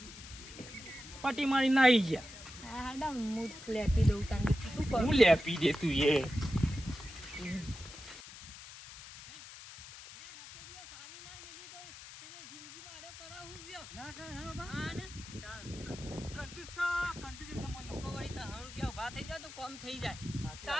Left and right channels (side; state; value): left; noise; hiss, 15 dB below the sound